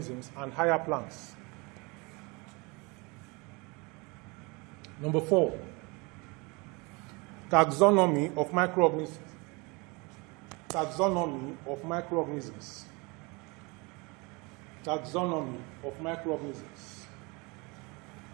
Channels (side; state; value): left; quieter; 27.6 dB